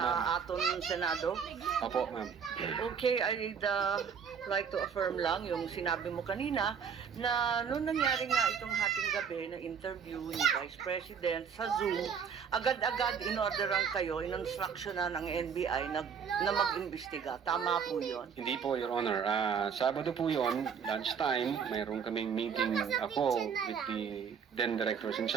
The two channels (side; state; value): left; quieter; 6.9 dB